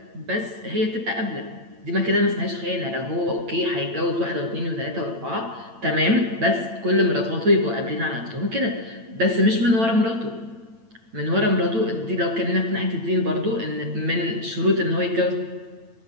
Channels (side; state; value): left; late; 8.9 ms